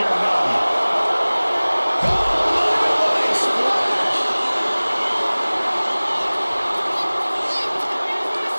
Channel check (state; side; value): inverted; both; correlation -1.00